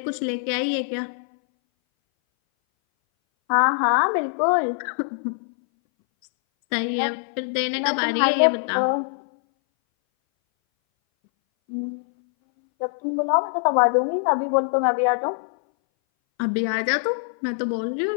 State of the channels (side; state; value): right; silent; 61 dB below the other